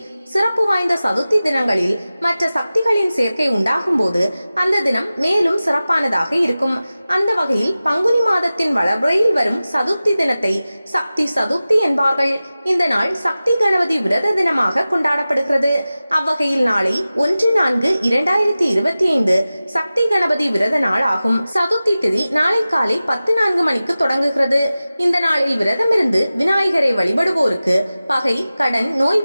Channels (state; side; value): inverted; both; correlation -0.96